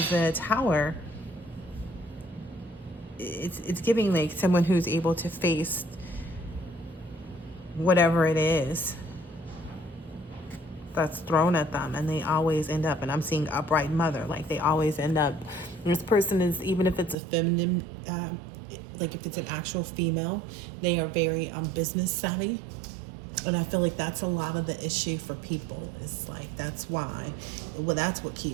the tower, it's giving like someone who's able to face whatever it is that's thrown at them, and they always end up, and I'm seeing upright mother, like they always end up, this person is, even if it's a feminine, like if it's an actual female, they are very business savvy. And I feel like that's a lot of the issue for people, is like, that's why, well, that's what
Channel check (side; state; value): left; drops out; at 17.2 s